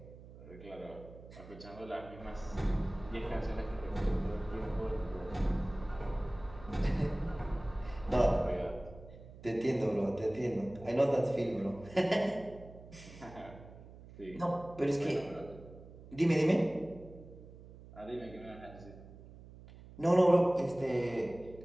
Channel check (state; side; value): noise; right; hum, 18 dB below the sound